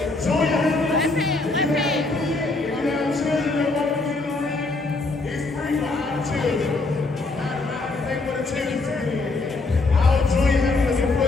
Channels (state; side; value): quieter; right; 3.4 dB